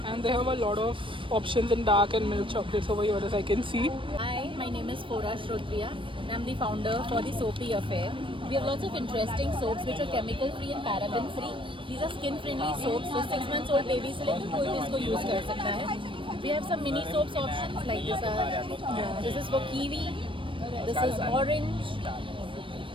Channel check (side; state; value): left; late; 0.25 ms